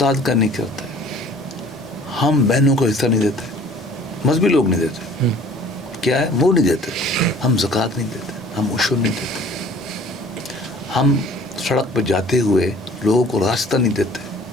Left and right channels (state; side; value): normal; both; correlation 0.50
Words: کا نہیں کرتے, ہم بہنوں کو حصہ نہیں دیتے, مذہبی لوگ نہیں دیتے. کیا ہے؟ وہ نہیں دیتے. ہم زکوٰۃ نہیں دیتے, ہم عشر نہیں دیتے, ہم سڑک پہ جاتے ہوئے لوگوں کو راستہ نہیں دیتے,